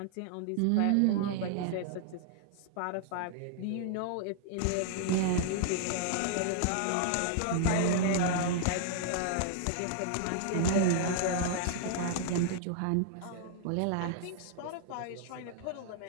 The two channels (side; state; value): both; different; correlation 0.00